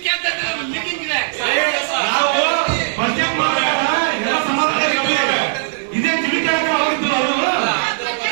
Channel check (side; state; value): left; silent; 63 dB below the other